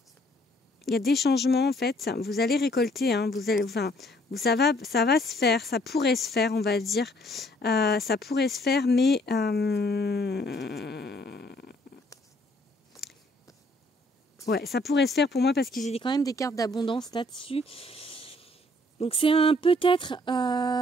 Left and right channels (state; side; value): normal; both; correlation 0.63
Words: Il y a des changements en fait. Vous allez récolter. Hein, ça va se faire. Ça pourrait se faire, on va dire. Ça pourrait se faire, mais ouais, ça pourrait se faire pour moi parce que j'ai quand même des cartes d'abondance là-dessus. Donc c'est un peut-être,